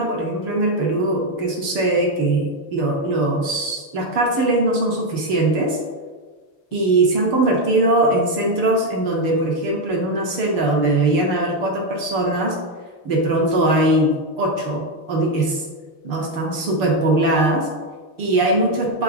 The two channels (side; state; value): right; late; 6.6 ms